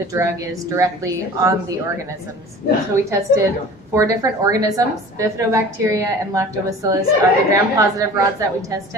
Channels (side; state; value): both; normal; correlation 0.42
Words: drug is directly on the organisms. So we tested 4 different organisms. Bifidobacteria and lactobacillus are the gram-positive rods that we